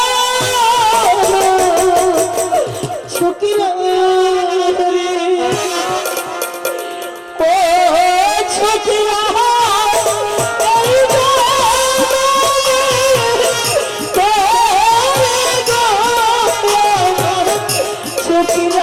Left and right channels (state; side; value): identical; both; correlation 1.00